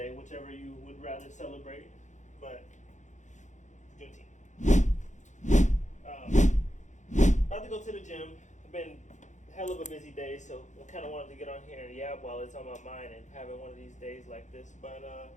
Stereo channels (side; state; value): right; late; 0.35 ms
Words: whichever you would rather celebrate. But Juneteenth. About to go to the gym. I've been hell of a busy day, so I kind of wanted to get on here and yap while it's on my mind and having one of these days like this. But